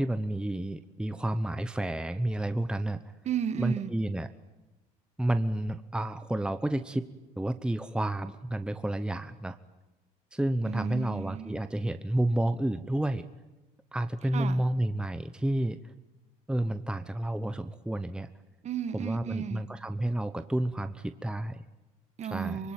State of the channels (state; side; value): normal; both; correlation 0.94